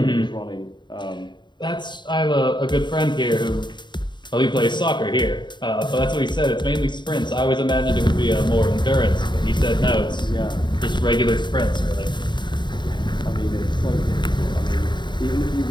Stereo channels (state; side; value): late; right; 0.22 ms